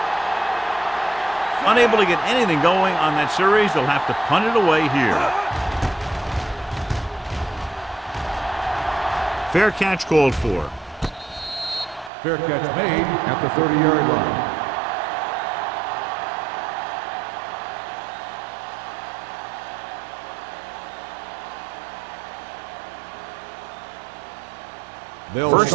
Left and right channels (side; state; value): left; drops out; at 12.1 s